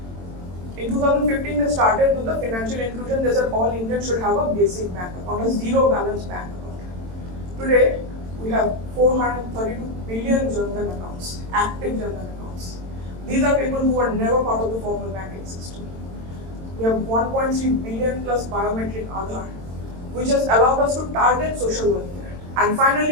In 2015, they started with the financial inclusion. They said all Indians should have a basic bank account, a zero balance bank account. Today, we have 432 billion Jandan accounts, active Jandan accounts. These are people who are never part of the formal banking system. We have 1.3 billion plus biometric Aadhaar, which has allowed us to target social welfare. And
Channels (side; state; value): left; late; 22 ms